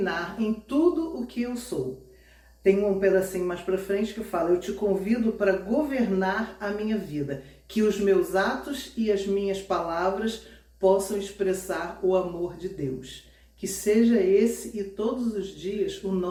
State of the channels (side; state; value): both; identical; correlation 1.00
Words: em tudo o que eu sou. Tem um pedacinho mais para frente que fala: eu te convido para governar a minha vida, que os meus atos e as minhas palavras possam expressar o amor de Deus. Que seja esse e todos os dias o